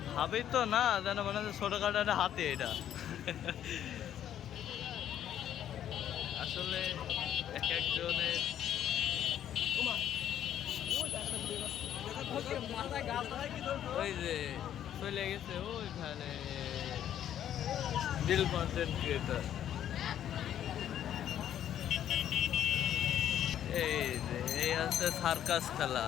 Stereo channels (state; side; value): quieter; right; 10.6 dB